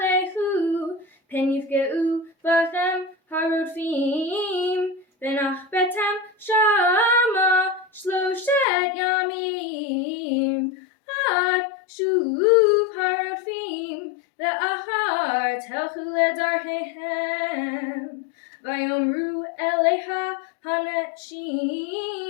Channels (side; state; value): right; drops out; at 8.7 s